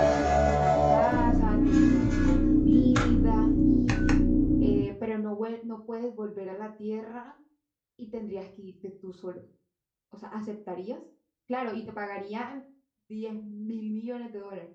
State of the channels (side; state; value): both; identical; correlation 1.00